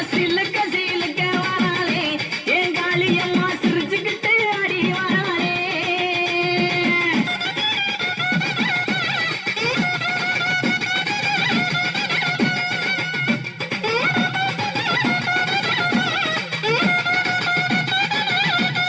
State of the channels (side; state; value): both; identical; correlation 1.00